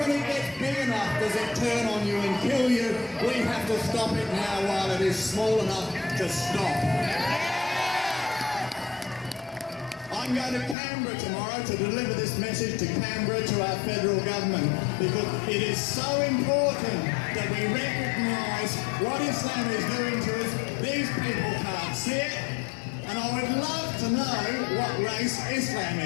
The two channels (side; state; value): right; drops out; at 10.8 s